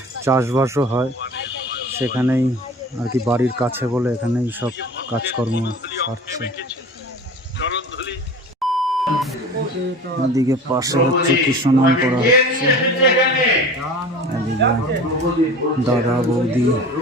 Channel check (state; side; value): normal; both; correlation 0.38